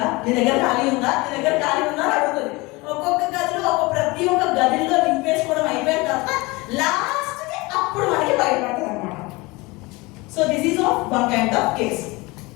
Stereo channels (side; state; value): right; quieter; 23.7 dB